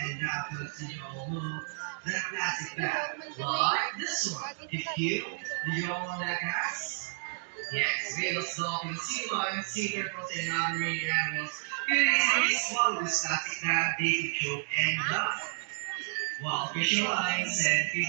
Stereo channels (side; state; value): left; silent; digital silence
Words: that puts you all know that plastic bag. Like this one. If you, did you all know that guys? Yes, whales, dolphins, sea lions, sea turtles, and other marine animals can easily swallow this plastic bag they can choke and die. While fish lines and